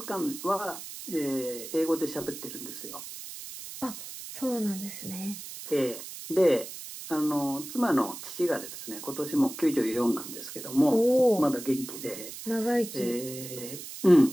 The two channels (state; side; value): noise; right; hiss, 11 dB below the sound